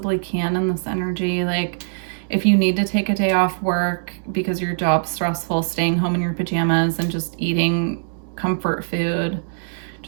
can in this energy. Like if you need to take a day off work because your job's stressful, staying home in your pajamas and just eating comfort food,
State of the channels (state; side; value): silent; left; digital silence